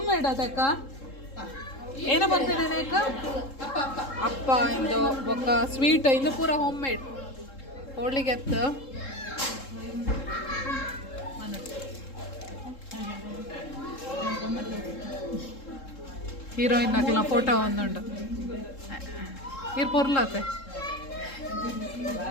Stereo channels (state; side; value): late; right; 3.7 ms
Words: ಮೇಡ್ ಅದಕ್ಕ ಏನ ಬರ್ತೇನೆ ಅಕ್ಕ ಅಪ್ಪ ಇಂದು ಬೊಕ್ಕ ಸ್ವೀಟ್ ಇಂದು ಪೂರ ಹೋಮ್ ಮೇಡ್ ಹೋಳಿಗೆ ಎತ್ತು ಹೀರೋಯಿನ್ ಹಾಕಲ ಫೋಟೋ ಒಂದುಂಡು ಇರ್ ಪೊರ್ಲಾತೆ